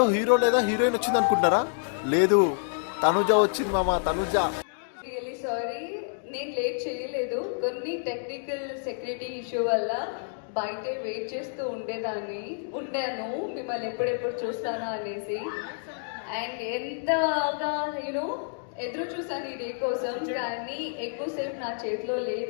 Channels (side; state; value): right; silent; digital silence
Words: హీరో లేదా హీరోయిన్ వచ్చింది అనుకుంటారా? లేదు, తనుజ వచ్చింది మామ, తనుజ. రియలీ సారీ, నేను లేట్ చేయలేదు. కొన్ని టెక్నికల్ సెక్యూరిటీ ఇష్యూ వల్ల బయటే వెయిట్ చేస్తూ ఉండాను మిమ్మల్ని ఎప్పుడెప్పుడు చూస్తానా అనేసి. అండ్ ఎంతగా ఎదురు చూసాను ఈ డే కోసం, కానీ ఎక్కువసేపు నా చేతిలో